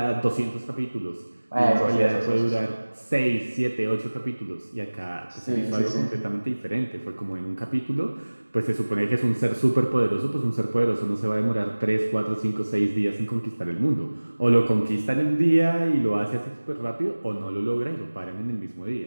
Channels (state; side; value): inverted; both; correlation -1.00